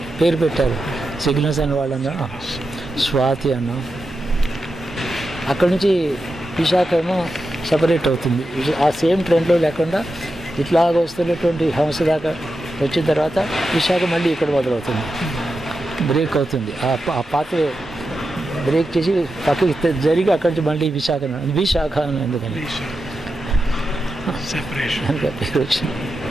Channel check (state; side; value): normal; both; correlation 0.89